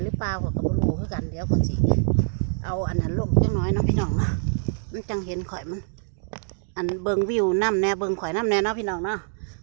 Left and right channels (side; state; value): left; silent; digital silence